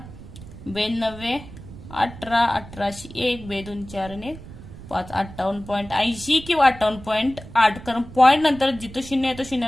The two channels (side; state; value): right; noise; rumble, 15 dB below the sound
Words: 92 18, 18शी 1, 2 2 4 आणि 5, 58.80 किंवा 58.8. कारण पॉइंट नंतर जिथं शून्य येतो